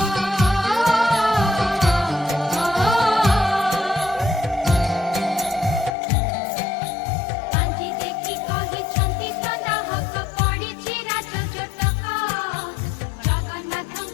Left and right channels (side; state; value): right; drops out; at 6.0 s